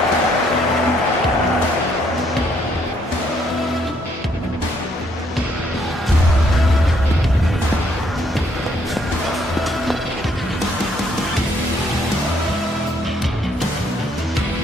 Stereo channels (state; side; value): normal; both; correlation 0.69